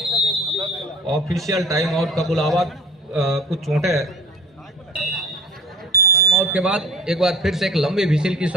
ऑफिशियल टाइम आउट का बुलावा, कुछ चोटें आउट के बाद एक बार फिर से एक लंबी विसिल की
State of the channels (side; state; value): both; normal; correlation 0.43